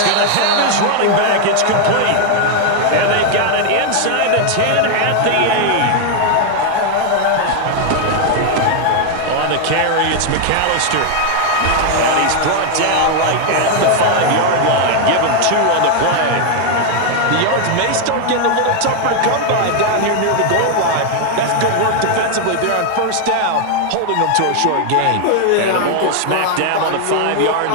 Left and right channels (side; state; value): both; different; correlation 0.00